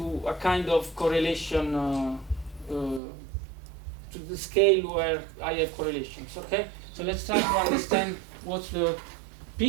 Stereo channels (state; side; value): drops out; left; at 3.0 s